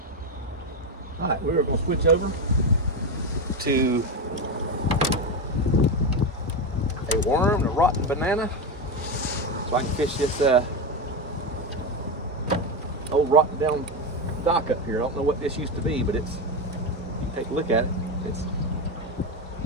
All right, we're going to switch over to a worm, a rotten banana, so I can fish this old rotten down dock up here. I don't know what this used to be, but it's, you take a look at it, it's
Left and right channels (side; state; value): both; normal; correlation 0.13